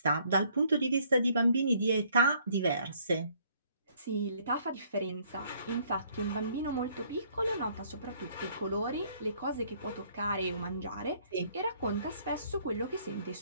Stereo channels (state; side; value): inverted; both; correlation -0.64